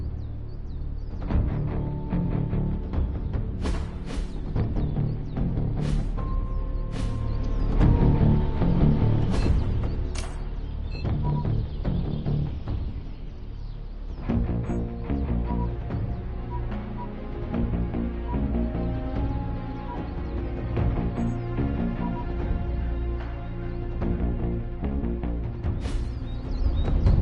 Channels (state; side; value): identical; both; correlation 1.00